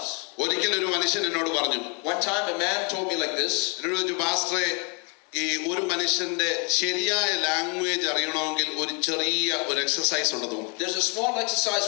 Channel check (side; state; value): right; quieter; 34.4 dB